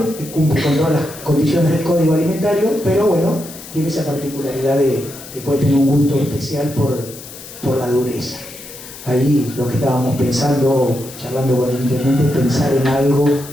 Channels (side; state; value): left; noise; hiss, 15 dB below the sound